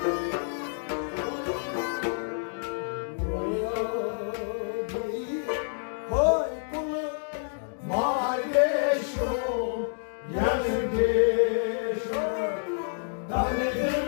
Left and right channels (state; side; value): silent; right; digital silence